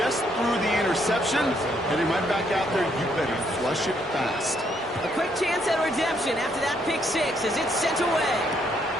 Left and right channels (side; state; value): both; normal; correlation 0.71